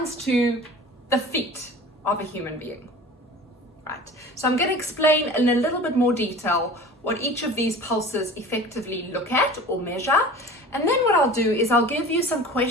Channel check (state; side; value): normal; both; correlation 0.40